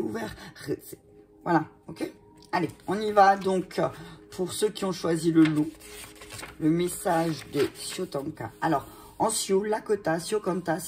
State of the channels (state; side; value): identical; both; correlation 1.00